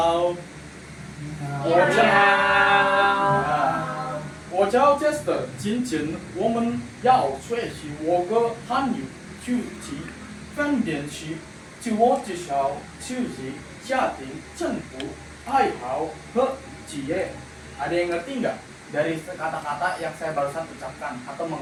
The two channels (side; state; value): both; identical; correlation 1.00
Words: 我叫 Jester。今天我们要学习我国汉语书籍分辨区自我介绍、休息、家庭、政府、爱好和职业。Ada yang ngerti nggak dari kata-kata yang saya barusan ucapkan atau